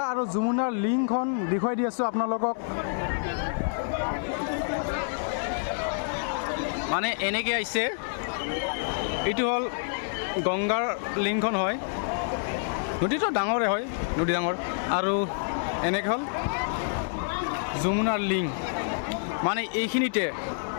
আৰু যমুনাৰ লিংকখন দেখুৱাই দি আছোঁ আপোনালোকক। মানে এনেকৈ আহিছে, এইটো হ'ল গংগাৰ লিংকখন হয়। নদীটো ডাঙৰে হয়, নদী ডাঙৰ। আৰু এনেকৈ হ'ল যমুনাৰ লিংক, মানে এইখিনিতে,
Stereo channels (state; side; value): silent; right; digital silence